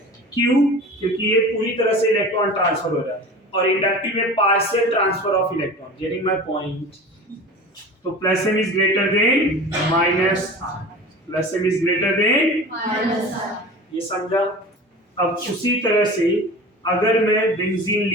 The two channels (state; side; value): normal; both; correlation 0.36